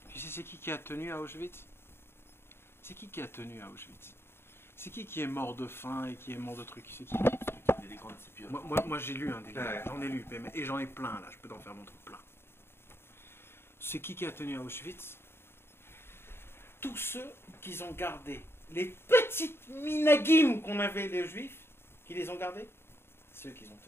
Tu sais, c'est qui a tenu à Auschwitz? C'est qui a tenu à Auschwitz? C'est qui est mort de faim et qui est mort de trucs? C'est qui? Des grandes sépultures. Moi j'ai lu des livres, Ouais. j'en ai lu, et j'en ai plein là, je peux t'en faire montrer plein. C'est qui a tenu à Auschwitz? Tous ceux qui ont gardé les petites minagim qu'on avait les juifs, qui les ont gardés, c'est eux qui ont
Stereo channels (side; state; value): right; late; 0.11 ms